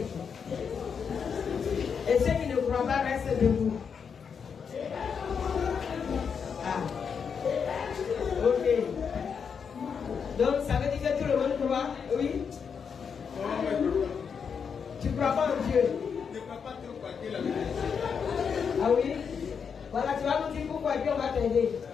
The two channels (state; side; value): quieter; right; 6.5 dB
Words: Et ceux qui ne croient pas restent debout. Ah. Ok. Donc, ça veut dire que tout le monde croit? Oui? Tu ne crois pas en Dieu? Je ne crois pas trop quoi que la Bible est Dieu. Ah oui? Voilà, tu vas nous dire pourquoi et puis on va t'aider.